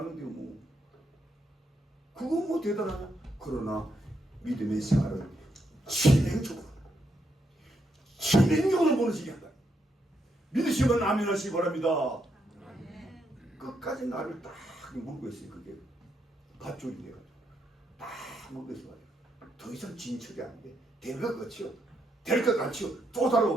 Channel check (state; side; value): normal; both; correlation 0.79